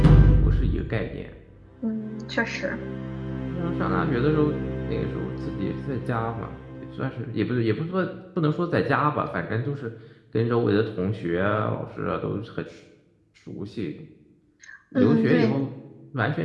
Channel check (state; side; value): identical; both; correlation 1.00